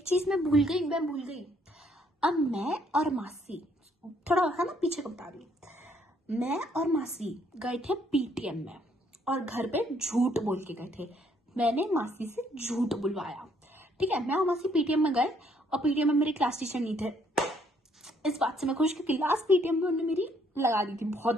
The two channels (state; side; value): normal; both; correlation 0.67